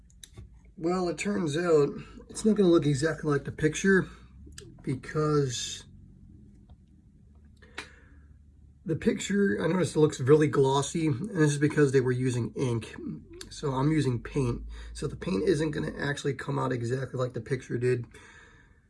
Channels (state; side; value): identical; both; correlation 1.00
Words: well, it turns out it's not going to look exactly like the picture because the picture, I noticed it looks really glossy, and this is because they were using ink. So I'm using paint. So the paint isn't going to actually come out exactly like the picture did,